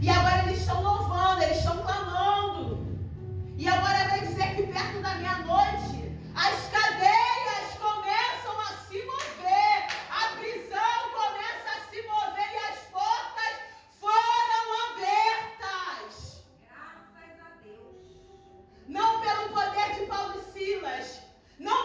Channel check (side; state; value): both; identical; correlation 1.00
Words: E agora eles estão louvando, eles estão clamando. E agora vai dizer que perto da meia-noite, as cadeias começam a se mover, a prisão começa a se mover e as portas foram abertas. Graças a Deus. Não pelo poder de Paulo e Silas,